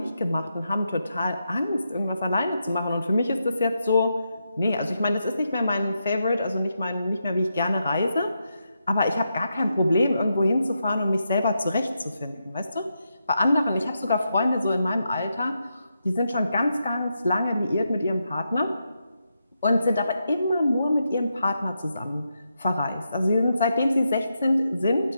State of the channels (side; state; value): both; inverted; correlation -0.84